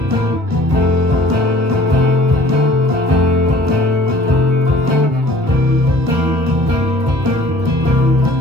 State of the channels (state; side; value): late; left; 1.4 ms